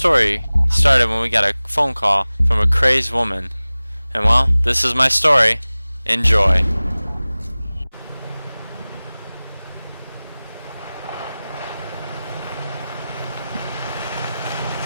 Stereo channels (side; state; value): both; inverted; correlation -0.98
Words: started when we got a phone call from a crazed woman. And well, this is my story. Enjoy.